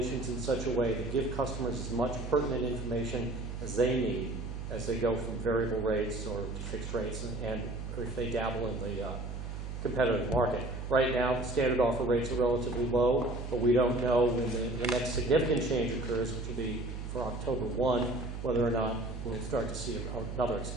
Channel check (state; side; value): noise; right; hum, 7 dB below the sound